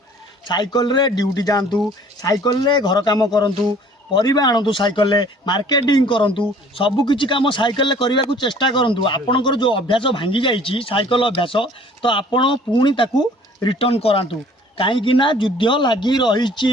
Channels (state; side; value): normal; both; correlation 0.53